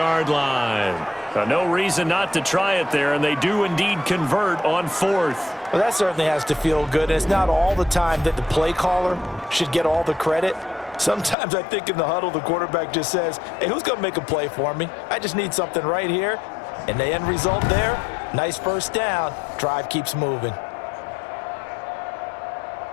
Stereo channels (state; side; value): drops out; right; at 11.4 s